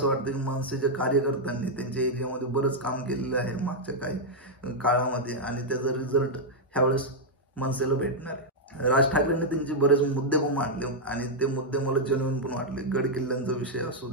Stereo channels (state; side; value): normal; both; correlation -0.03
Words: वाटतं की मनसेच्या कार्यकर्त्यांनी त्यांच्या एरियामध्ये बरंच काम केलेलं आहे मागच्या काही काळामध्ये आणि त्याचा रिझल्ट ह्यावेळेस मनसेला भेटणार आहे। राज ठाकरेंनी त्यांचे बरेच मुद्दे पण मांडले आणि ते मुद्दे मला जेन्युइन पण वाटले। गड किल्ल्यांचा विषय असू